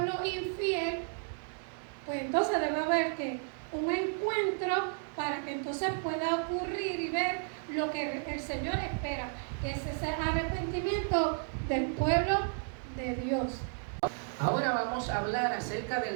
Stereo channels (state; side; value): silent; left; 56 dB below the other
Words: infiel, pues entonces debe haber que un encuentro para que entonces pueda ocurrir y ver lo que el Señor espera, que es ese arrepentimiento del pueblo de Dios. Ahora vamos a hablar acerca